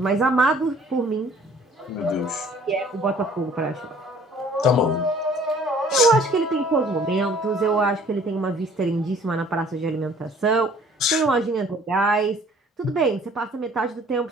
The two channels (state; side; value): normal; both; correlation 0.55